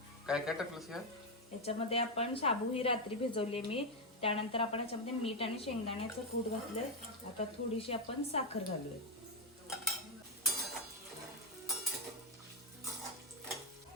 काय काय टाकलंस या? याच्यामध्ये आपण शाबू ही रात्री भिजवली मी. त्यानंतर आपण याच्यामध्ये मीठ आणि शेंगदाण्याचं कूट घातलंय. आता थोडीशी आपण साखर घालूया.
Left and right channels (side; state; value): both; normal; correlation 0.04